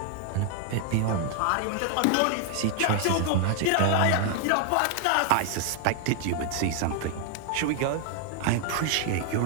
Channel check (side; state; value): both; different; correlation 0.00